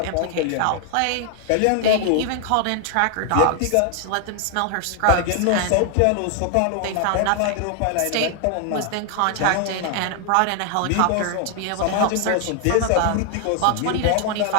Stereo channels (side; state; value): both; different; correlation 0.00